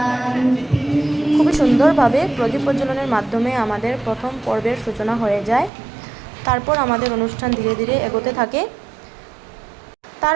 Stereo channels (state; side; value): drops out; left; at 5.7 s